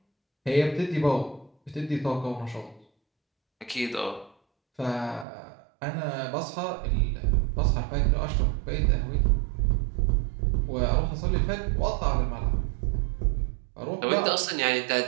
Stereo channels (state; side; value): drops out; left; at 5.2 s